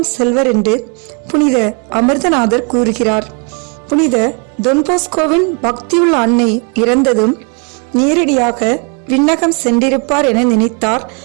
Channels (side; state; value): left; quieter; 35.9 dB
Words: செல்வர் என்று புனித அமிர்தநாதர் கூறுகிறார். புனித தொன்போஸ்கோவின் பக்தியுள்ள அன்னை இறந்ததும் நேரடியாக விண்ணகம் சென்றிருப்பார் என நினைத்தார்